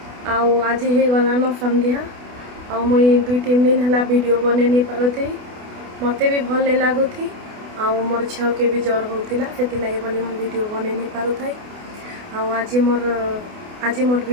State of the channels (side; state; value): left; late; 28 ms